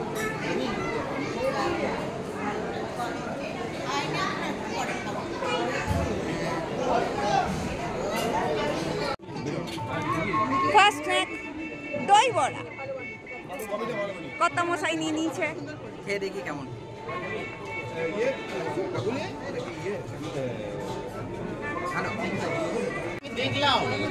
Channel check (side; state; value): both; identical; correlation 1.00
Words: ফার্স্ট ট্র্যাক দই বড়া, কত মশাই নিয়ে নিয়েছে, খেয়ে দেখি কেমন।